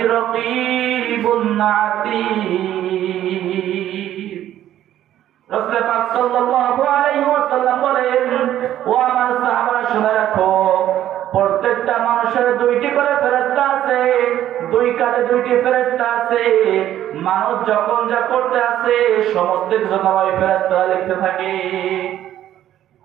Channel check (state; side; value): quieter; left; 12.1 dB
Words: রাকীবুন আতীদ। রাসূল পাক সাল্লাল্লাহু আলাইহি ওয়াসাল্লাম বলেন, ও আমার সাহাবারা শুনে রাখো, প্রত্যেকটা মানুষের দুইটি করে ফেরেশতা আছে, দুই কাঁধে দুইটি ফেরেশতা আছে। মানুষ যখন যা করতে আছে সমস্ত কিছু ওই ফেরেশতারা লিখতে থাকে।